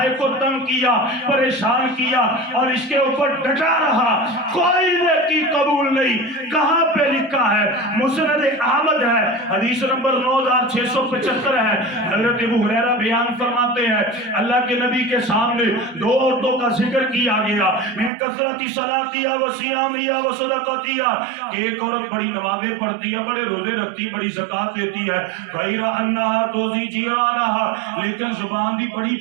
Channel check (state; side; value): drops out; left; at 18.1 s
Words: کو تنگ کیا، پریشان کیا اور اس کے اوپر ڈٹا رہا، کوئی نیکی قبول نہیں۔ کہاں پہ لکھا ہے؟ مسند احمد ہے، حدیث نمبر 9675 ہے، ہے۔ حضرت ابو ہریرہ بیان فرماتے ہیں اللہ کے نبی کے سامنے دو عورتوں کا ذکر کیا گیا، من کثرت صلاتیا و صیامیا و صدقاتیا، کہ ایک عورت بڑی نمازیں پڑھتی ہے، بڑے روزے رکھتی ہے، بڑی زکات دیتی ہے، غیر انہا توزی جیرانہا، لیکن زبان بھی بڑی